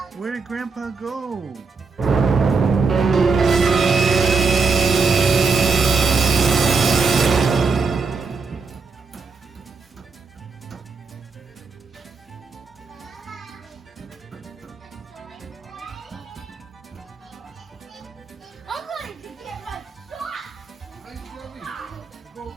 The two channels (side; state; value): left; quieter; 4.6 dB